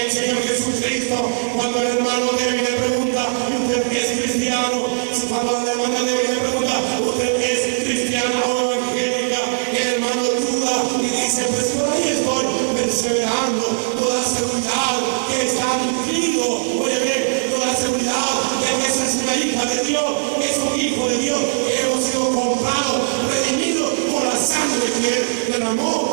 Señor Jesucristo. Cuando el hermano débil le pregunta, ¿usted es cristiano? Cuando la hermana débil le pregunta, ¿usted es cristiana o evangélica? El hermano duda y dice, pues por ahí estoy perseverando. Toda seguridad que está nutrido, oye bien, toda seguridad de que esa es una hija de Dios, es un hijo de Dios, que hemos sido comprados, redimidos por la sangre que Él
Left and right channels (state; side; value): silent; left; digital silence